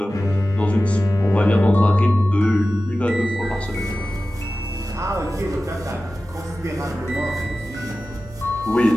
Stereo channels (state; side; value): normal; both; correlation 0.95